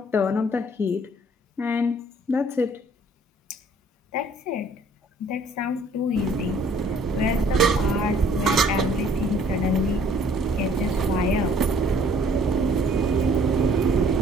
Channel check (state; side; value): normal; both; correlation 0.58